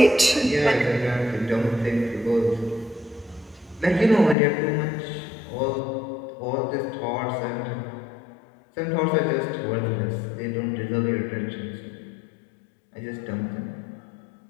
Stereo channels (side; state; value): right; drops out; at 4.4 s